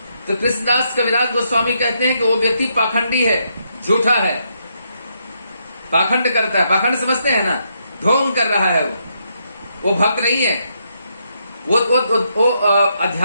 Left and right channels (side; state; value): both; inverted; correlation -0.78